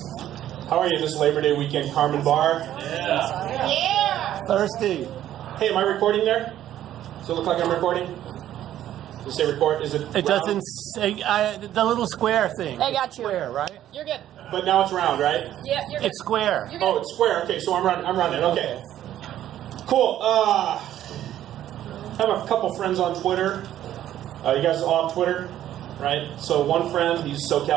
How are you this Labor Day weekend, Karman Bar? Yeah. Thirsty. Hey, am I recording there? Does it look like I'm recording? Does it say record? Is it It round? doesn't say, the little square thing. I got you. Square, right? You're good. But now it's round, right? Yeah, you're good. It's square. You're good. Oh, it's square. Okay, so I'm running. Okay. Cool. I have a couple friends on Twitter. You guys are all on Twitter, right? So one friend, he's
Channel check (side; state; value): left; quieter; 12.1 dB